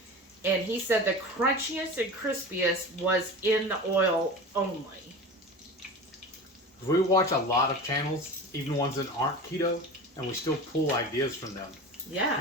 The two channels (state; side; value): normal; both; correlation 0.32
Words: And he said the crunchiest and crispiest was in the oil only. We watch a lot of channels, even ones that aren't keto, and we still pull ideas from them. Yeah.